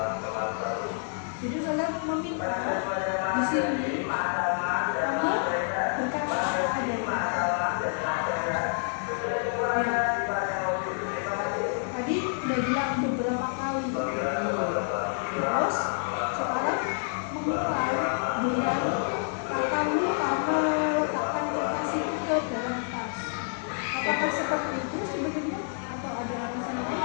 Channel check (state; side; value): silent; right; 59 dB below the other